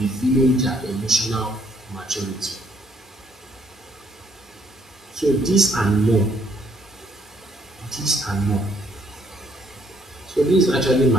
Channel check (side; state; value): both; normal; correlation 0.67